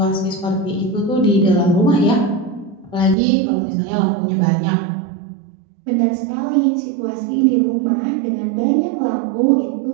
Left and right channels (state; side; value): drops out; left; at 3.2 s